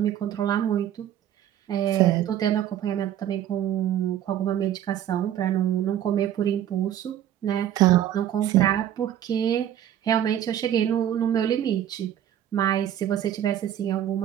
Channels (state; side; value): quieter; left; 10.9 dB